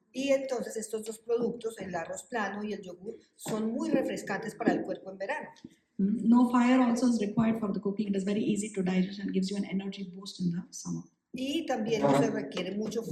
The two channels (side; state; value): both; identical; correlation 1.00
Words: Y entonces estos dos productos, el arroz plano y el yogur, son muy refrescantes para el cuerpo en verano. No fire also is required for the cooking. It is very easy to digest and gives you an energy boost in the summer. Y también no se requiere mucho